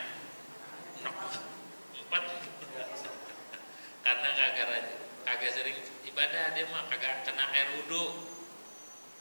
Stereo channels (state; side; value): inverted; both; correlation -1.00